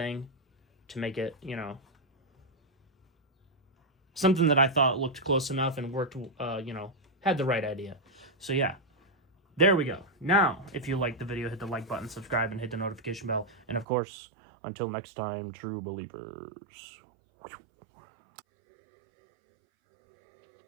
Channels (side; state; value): left; drops out; at 13.9 s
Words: to make it, you know, something that I thought looked close enough and worked, you know, had the right idea. So yeah, there we go. Now, if you liked the video, hit the like button, subscribe, and hit the notification bell. And of course, until next time, true believers.